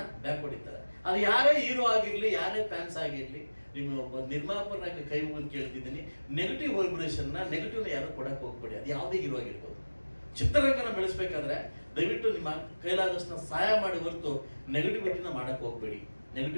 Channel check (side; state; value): both; inverted; correlation -1.00